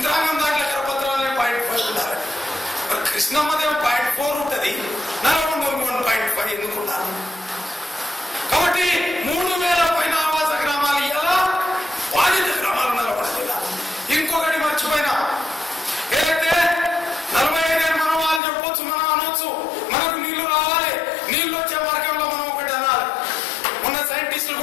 దాంట్లో కరపత్రాలే 0.5 ఉండాలి. కృష్ణమ్మదేమో 0.4 ఉంటుంది, నల్గొండ 1.5 ఎందుకున్నారు? కాబట్టి 3000 పైన ఆవాస గ్రామాలు ఇలా బాధిత గ్రామాలు నల్గొండ జిల్లా. ఇంకొకటి మర్చిపోయినా, ఏదైతే 45 ఏళ్ళు మనం వాళ్ళు చెప్పొచ్చు, మనం అనొచ్చు మనకు నీళ్లు రావాలి, నీళ్లు వచ్చే మార్గంలో మనం ఒకటి అనాలి. మొన్న సైంటిస్టులు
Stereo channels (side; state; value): right; drops out; at 18.4 s